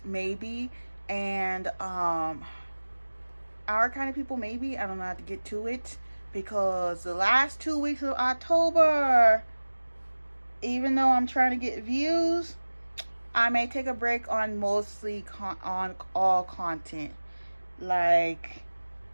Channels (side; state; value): both; inverted; correlation -1.00